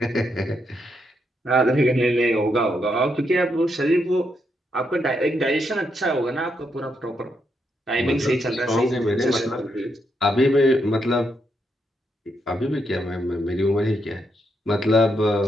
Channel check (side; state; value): both; normal; correlation 0.80